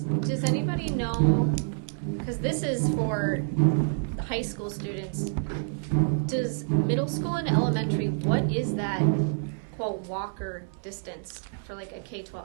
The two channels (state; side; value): silent; left; digital silence